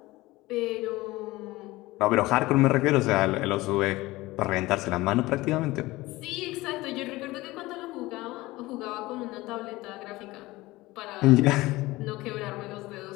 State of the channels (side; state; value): right; quieter; 19.6 dB